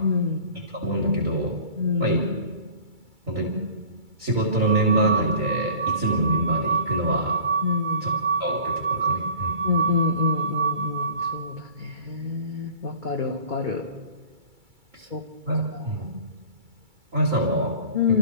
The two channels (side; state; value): left; late; 2.3 ms